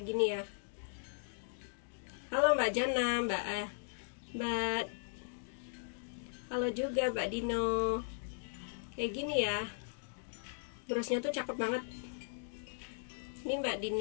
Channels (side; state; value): right; silent; digital silence